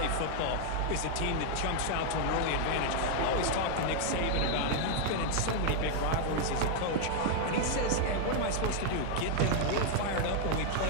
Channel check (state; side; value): different; both; correlation 0.00